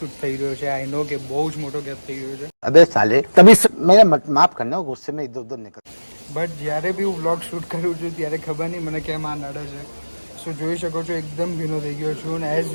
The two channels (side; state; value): both; inverted; correlation -1.00